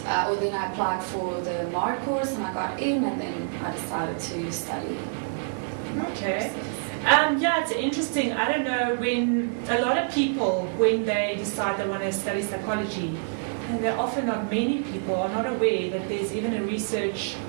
then I applied for the MAR course and I got in, and then I decided to study. Okay. Yeah, it's interesting. I don't know, when a lot of people, when they decide they want to study psychology, and they're often not many people are not aware that there's even a research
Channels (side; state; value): left; silent; digital silence